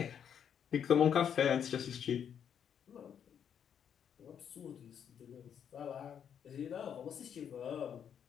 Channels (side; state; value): right; quieter; 8.4 dB